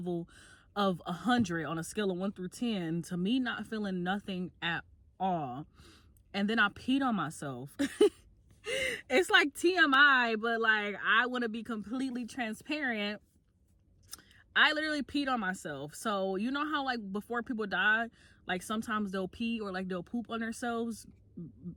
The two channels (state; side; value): identical; both; correlation 1.00